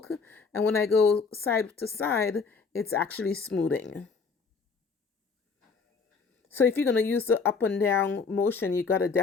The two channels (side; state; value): right; quieter; 5.0 dB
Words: And when I go side to side, it's actually smoothing. So if you're going to use the up and down motion, you got to